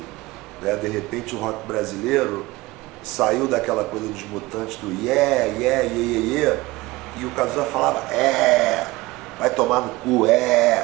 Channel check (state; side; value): quieter; left; 20.4 dB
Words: né? De repente o rock brasileiro saiu daquela coisa dos Mutantes, do yeah, yeah, yeah, yeah, yeah, e o Cazuza falava, vai tomar no cu,